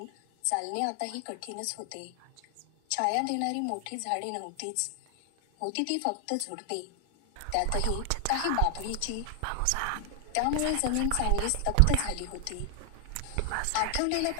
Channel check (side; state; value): both; different; correlation 0.00